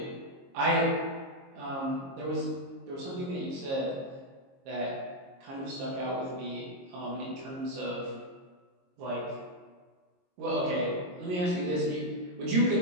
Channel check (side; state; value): left; late; 22 ms